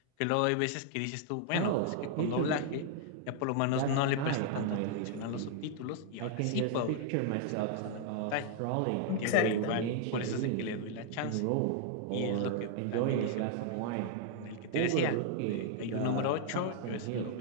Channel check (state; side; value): different; both; correlation -0.01